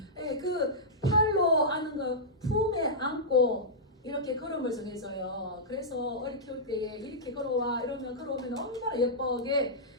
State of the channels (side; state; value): both; normal; correlation -0.12